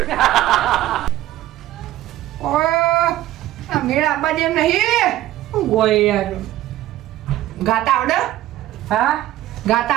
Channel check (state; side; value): quieter; left; 14.5 dB